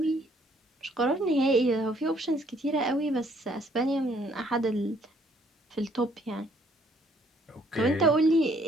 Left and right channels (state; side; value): normal; both; correlation 0.65